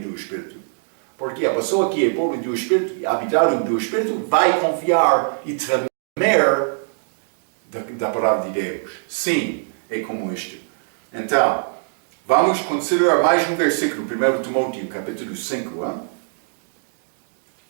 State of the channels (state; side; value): silent; left; digital silence